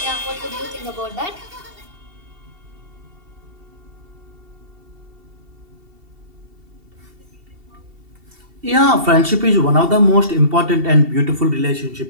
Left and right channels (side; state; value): left; late; 2.7 ms